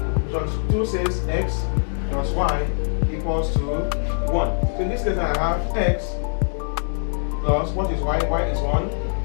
Equation 2 says x plus y equals to 1. So in this case I have x plus, what is y? Y is 1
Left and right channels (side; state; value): right; silent; digital silence